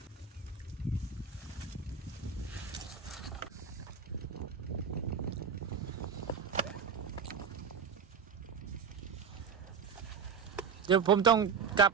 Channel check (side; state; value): left; quieter; 6.4 dB